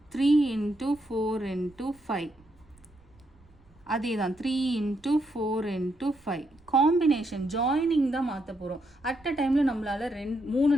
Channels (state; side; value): noise; right; rumble, 29 dB below the sound